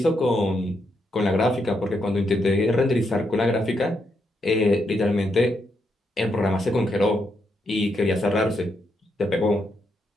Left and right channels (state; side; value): normal; both; correlation 0.80